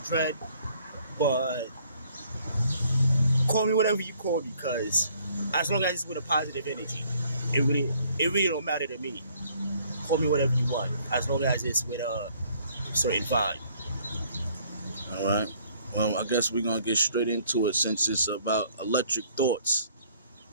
Dread, but call me whatever you call me, cause as long as it's with a positive energy, it really it really don't matter to me. Call me whatever you want, as long as it's with a certain vibe. All right. Well, I guess we're gonna get straight into it since it's about electric thoughts.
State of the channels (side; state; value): both; inverted; correlation -0.61